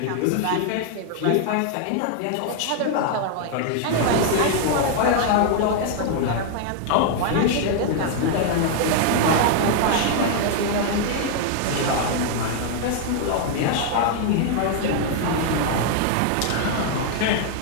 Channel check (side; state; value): both; different; correlation 0.00